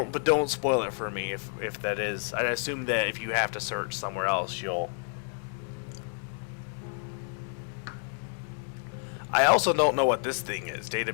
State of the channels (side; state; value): right; silent; digital silence